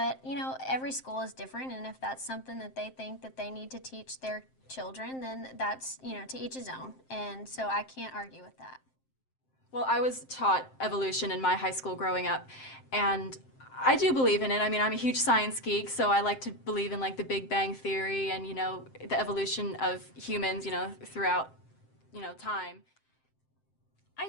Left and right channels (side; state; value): right; late; 7.6 ms